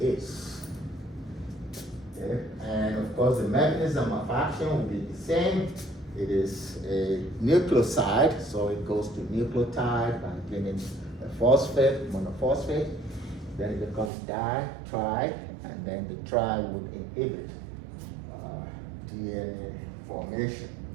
Okay. And of course, the mechanism of action will be the same. It is a nucleoside, so it goes to nucleotide by getting a phosphate, monophosphate. Then it becomes di, tri, and then the tri would inhibit DNA formation.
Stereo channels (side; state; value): left; drops out; at 14.1 s